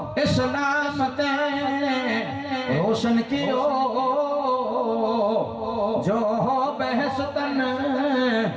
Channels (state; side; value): identical; both; correlation 1.00